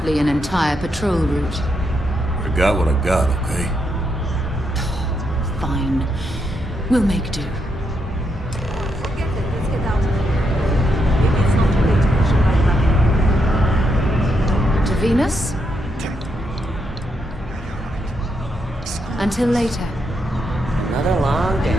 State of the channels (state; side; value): normal; both; correlation 0.80